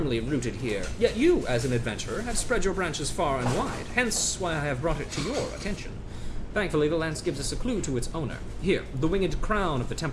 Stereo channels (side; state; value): both; identical; correlation 1.00